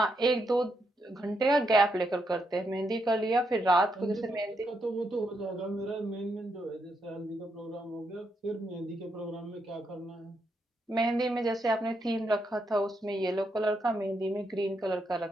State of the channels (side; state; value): both; normal; correlation 0.80